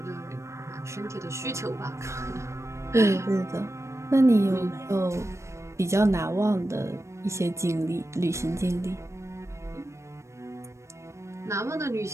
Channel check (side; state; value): left; late; 0.14 ms